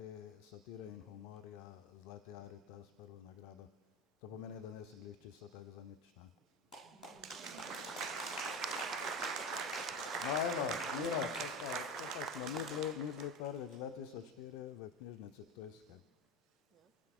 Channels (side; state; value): both; normal; correlation 0.24